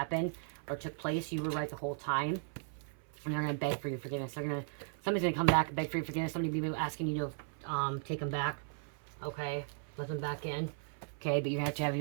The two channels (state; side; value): silent; left; 53 dB below the other